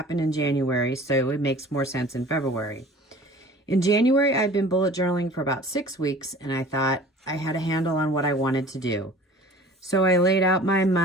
in January so it makes more sense in February. In January, I'd been bullet journaling for about 6 weeks, and I thought I had a handle on what I wanted to do. So I laid out my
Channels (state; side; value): normal; both; correlation 0.45